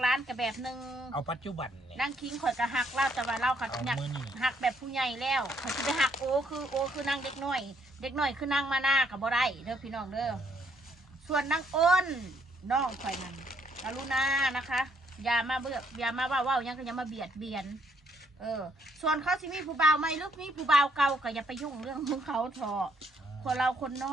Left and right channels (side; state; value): both; normal; correlation 0.69